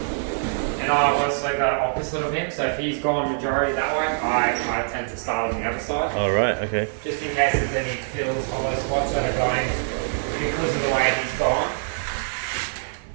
And I was like the opposite of him, so if he's gone majority that way, I tend to start on the other side. All right, okay. Just in case there's any fills or those spots that are going because of the way he's gone.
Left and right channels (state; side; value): silent; left; digital silence